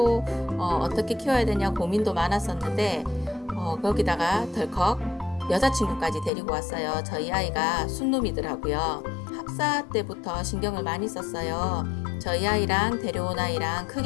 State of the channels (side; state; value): right; drops out; at 6.3 s